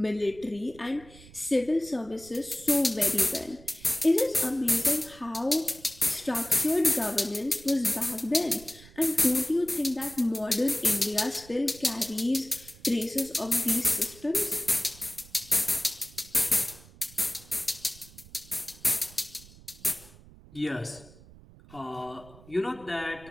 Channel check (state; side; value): noise; right; rumble, 21 dB below the sound